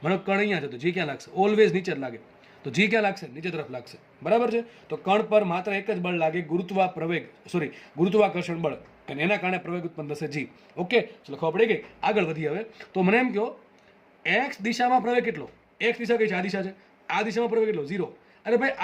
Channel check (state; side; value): identical; both; correlation 1.00